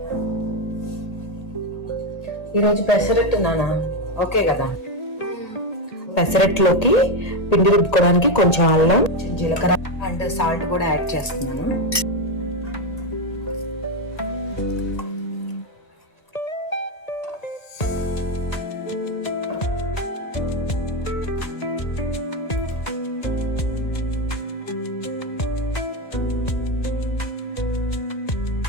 ఈరోజు పెసరట్టు నానా ఓకే కదా. పెసరట్టులోకి పిండి రుబ్బుకోవడానికి కొంచెం అల్లం, కొంచెం జీలకర్ర అండ్ సాల్ట్ కూడా యాడ్ చేస్తున్నాను.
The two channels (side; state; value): right; late; 1.6 ms